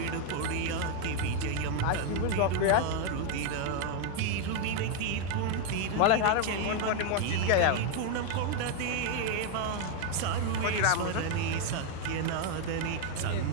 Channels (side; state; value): both; different; correlation 0.01